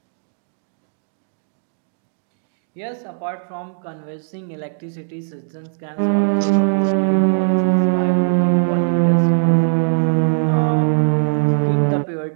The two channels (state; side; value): silent; left; digital silence